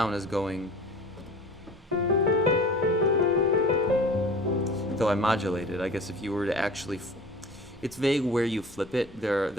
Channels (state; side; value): normal; both; correlation 0.41